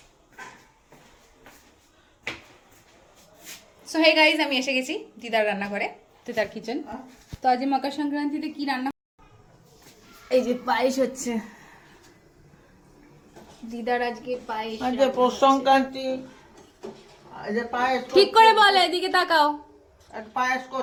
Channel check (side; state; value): both; identical; correlation 1.00